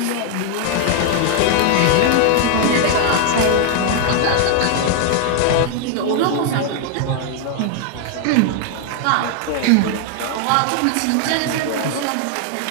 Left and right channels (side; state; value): both; different; correlation 0.00